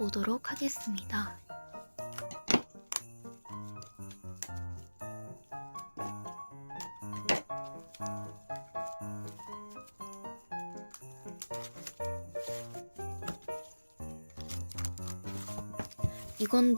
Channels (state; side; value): inverted; both; correlation -1.00